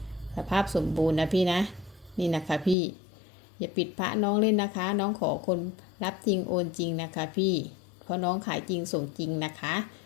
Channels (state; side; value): drops out; right; at 2.8 s